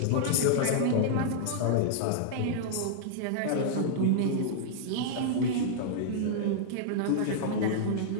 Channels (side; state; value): both; different; correlation -0.02